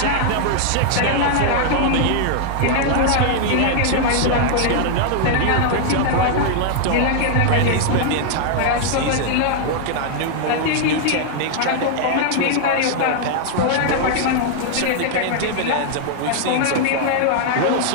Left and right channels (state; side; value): different; both; correlation -0.01